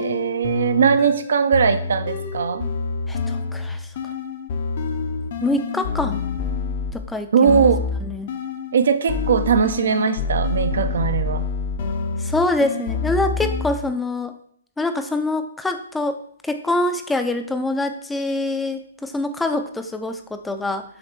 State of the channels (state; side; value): normal; both; correlation -0.17